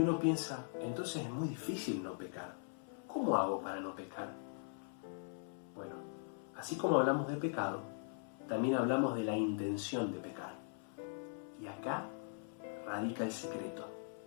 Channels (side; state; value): right; silent; 51 dB below the other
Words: piensa, entonces es muy difícil no pecar. ¿Cómo hago para no pecar? Bueno, así como hablamos de pecado, también hablamos de la intención de pecar. Y acá radica el secreto.